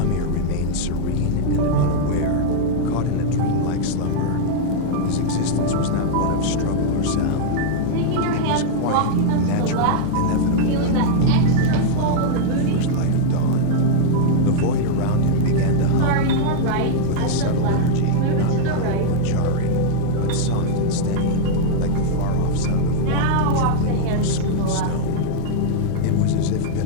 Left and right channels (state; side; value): different; both; correlation -0.01